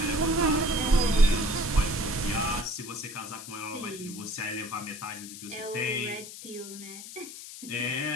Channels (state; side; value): noise; left; hiss, 12 dB below the sound